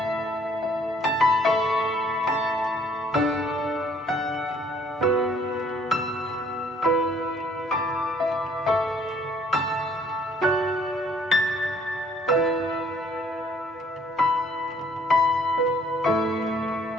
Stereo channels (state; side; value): normal; both; correlation 0.61